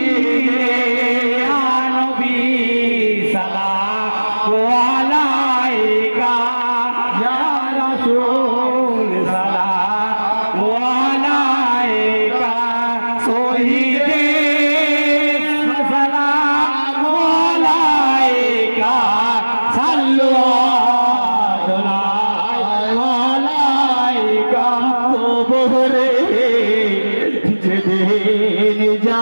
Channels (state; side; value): inverted; both; correlation -1.00